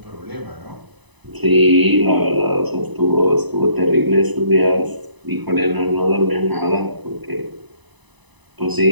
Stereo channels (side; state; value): left; late; 1.0 ms